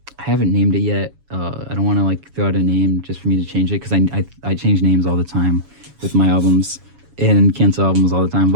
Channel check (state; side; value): late; left; 7.2 ms